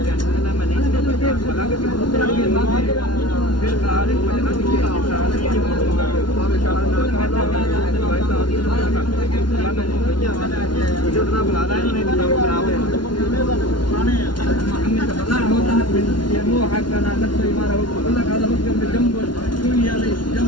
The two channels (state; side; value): late; right; 0.71 ms